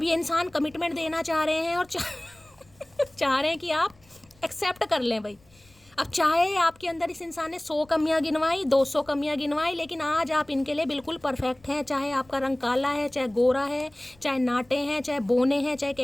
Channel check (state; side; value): noise; left; rumble, 29 dB below the sound